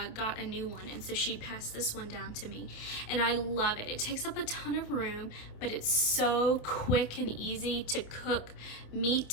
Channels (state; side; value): late; right; 27 ms